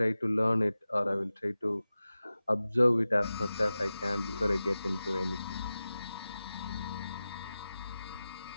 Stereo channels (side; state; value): both; inverted; correlation -0.95